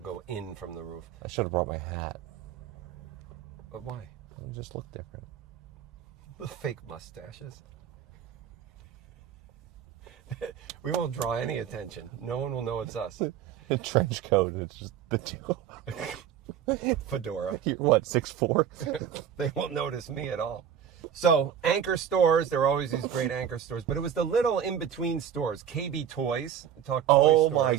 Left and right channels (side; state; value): left; quieter; 9.0 dB